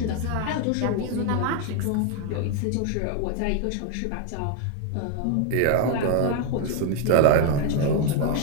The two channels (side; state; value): both; different; correlation 0.01